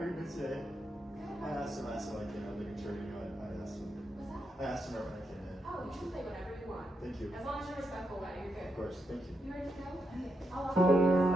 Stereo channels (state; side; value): normal; both; correlation 0.83